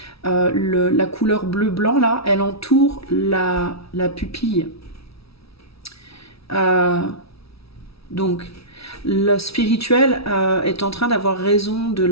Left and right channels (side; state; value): right; late; 0.76 ms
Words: la couleur bleu-blanc là, elle entoure la pupille. Euh, donc le spirituel est en train d'avoir raison de